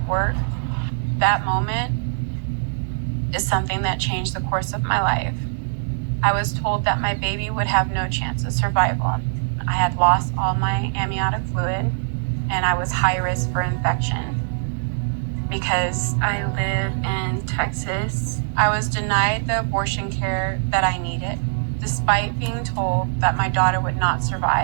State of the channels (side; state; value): left; silent; digital silence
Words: work. That moment is something that changed the course of my life. I was told that my baby would have no chance of survival. I had lost all my amniotic fluid, and I was high risk for infection. Because I live in Texas, I was denied the abortion care that I needed, despite being told that my daughter would not